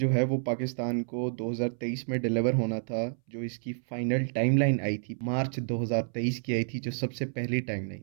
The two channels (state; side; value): silent; left; 58 dB below the other